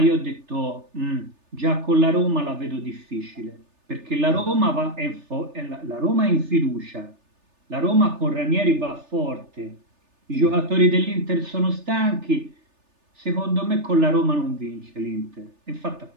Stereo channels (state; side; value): late; left; 3.3 ms